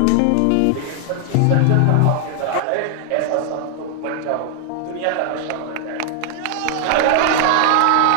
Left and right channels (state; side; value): different; both; correlation 0.00